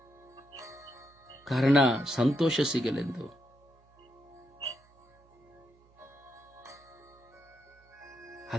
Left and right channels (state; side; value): noise; right; hum, 30 dB below the sound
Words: ಕಾರಣ ಸಂತೋಷ ಸಿಗಲೆಂದು.